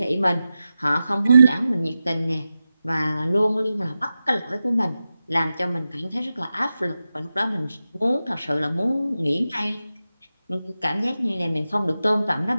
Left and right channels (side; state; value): both; inverted; correlation -0.92